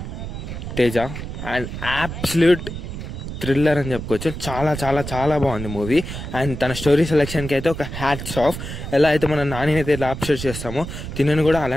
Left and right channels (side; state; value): right; noise; rumble, 8 dB below the sound